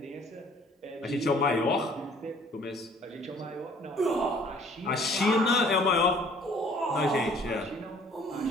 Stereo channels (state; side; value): normal; both; correlation 0.56